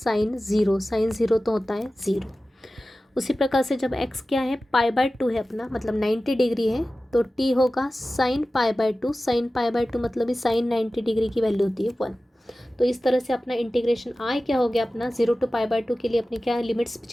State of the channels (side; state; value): both; normal; correlation 0.95